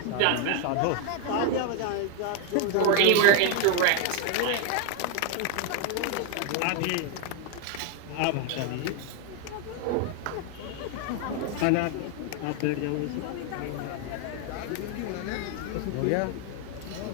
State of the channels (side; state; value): both; different; correlation 0.00